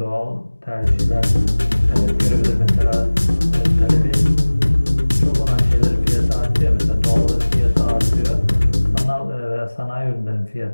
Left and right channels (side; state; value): both; inverted; correlation -1.00